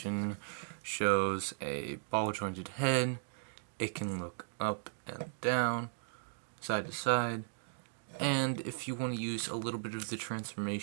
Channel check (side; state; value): left; silent; digital silence